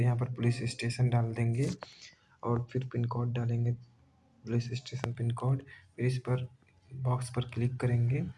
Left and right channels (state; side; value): identical; both; correlation 1.00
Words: यहाँ पर पुलिस स्टेशन डाल देंगे और फिर पिन कोड डालेंगे, पुलिस स्टेशन पिन कोड। फिर इस पर बॉक्स पर क्लिक करेंगे,